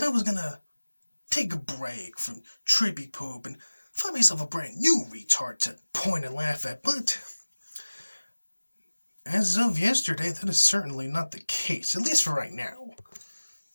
I was going to take a break from Troopy Poop and find myself a brand new retard to point and laugh at, but as of yesterday, that is certainly not the case, at least for right now.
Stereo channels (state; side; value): inverted; both; correlation -1.00